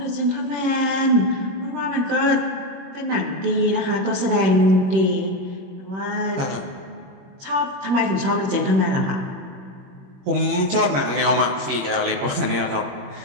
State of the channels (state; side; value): late; left; 21 ms